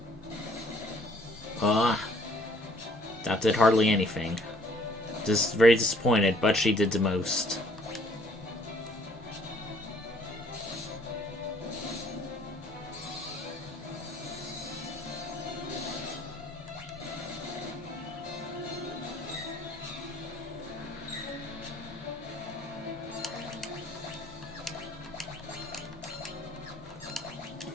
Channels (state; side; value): normal; both; correlation 0.60